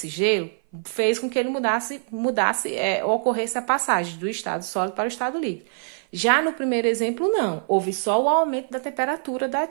gelo fez com que ele ocorresse a passagem do estado sólido para o estado líquido. Já no primeiro exemplo, não. Houve só o aumento da temperatura da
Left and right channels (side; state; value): left; silent; 57 dB below the other